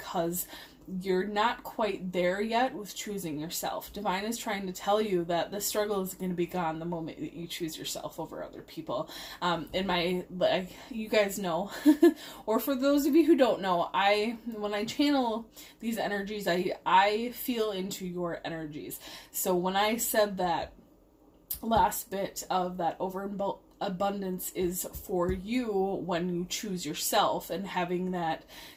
you're not quite there yet with choosing yourself. Divine is trying to tell you that the struggle is going to be gone the moment that you choose yourself over other people. You guys know, or for those of you who don't know, when I channel these energies, I feel into your energies. So when I said that last bit of that overabundance is for you when you choose yourself, and having that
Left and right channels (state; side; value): identical; both; correlation 1.00